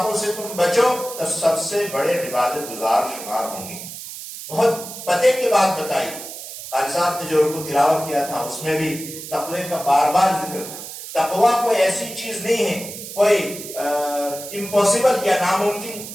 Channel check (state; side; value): noise; right; hiss, 11 dB below the sound